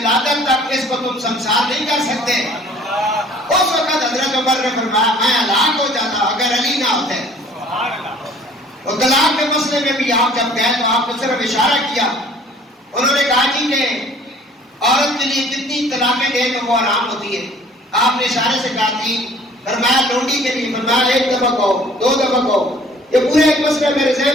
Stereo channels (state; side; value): normal; both; correlation 0.53